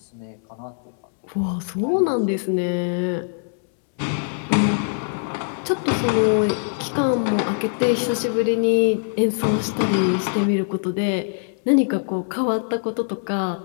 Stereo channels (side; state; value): right; silent; 61 dB below the other